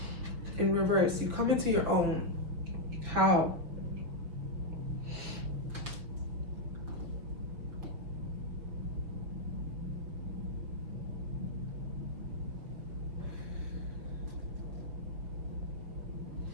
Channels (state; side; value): late; left; 6.1 ms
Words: in reverse. You come into your own. How?